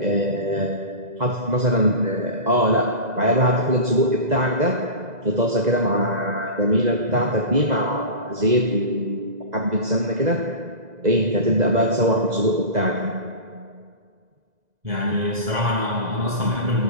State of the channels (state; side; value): late; left; 2.0 ms